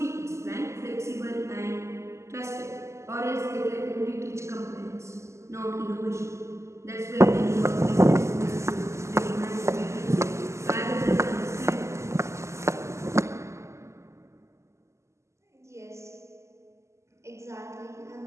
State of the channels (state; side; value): late; left; 0.13 ms